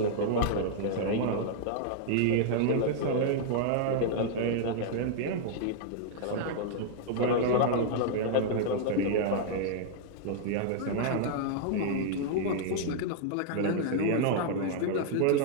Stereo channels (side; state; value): both; different; correlation -0.01